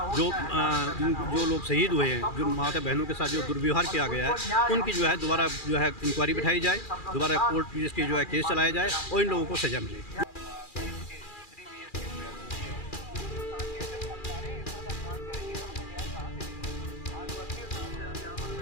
जो लोग शहीद हुए हैं, जो माता बहनों के साथ जो दुर्व्यवहार किया गया है, उनकी जो है दोबारा जो है इंक्वायरी बिठाई जाए, दोबारा कोर्ट इसकी जो है केस चलाया जाए और इन लोगों को सजा मिले।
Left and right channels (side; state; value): right; late; 2.4 ms